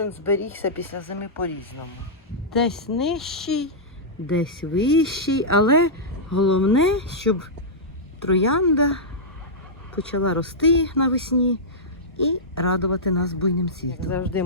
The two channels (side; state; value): both; normal; correlation -0.12